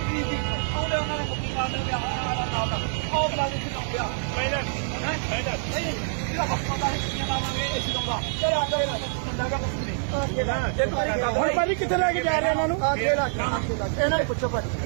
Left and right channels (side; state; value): left; silent; digital silence